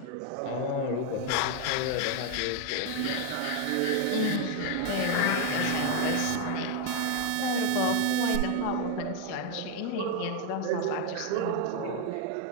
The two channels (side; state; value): both; different; correlation 0.00